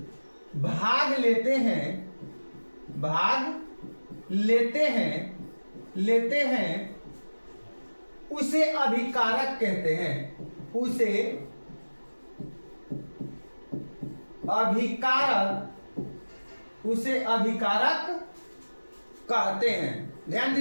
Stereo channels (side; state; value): both; inverted; correlation -1.00